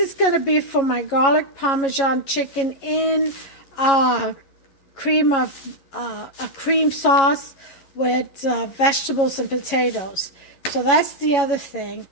going to be for my garlic parmesan chicken in a cream sauce with vegetables and potatoes. So that's the other thing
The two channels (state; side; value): late; right; 11 ms